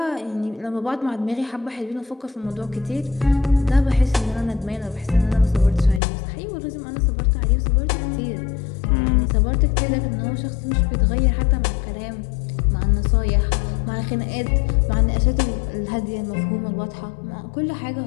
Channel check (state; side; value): drops out; right; at 6.0 s